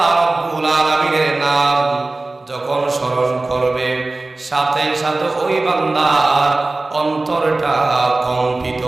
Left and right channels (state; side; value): quieter; left; 3.1 dB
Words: রাব্বুল আলামিনের নাম যখন স্মরণ করবে, সাথে সাথে ওই বান্দার অন্তরটা কম্পিত